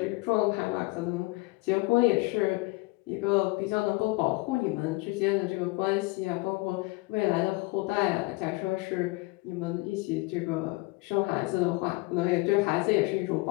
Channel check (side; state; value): right; quieter; 23.5 dB